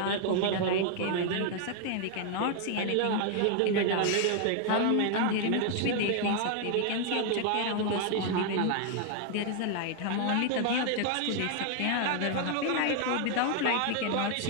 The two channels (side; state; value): both; different; correlation 0.00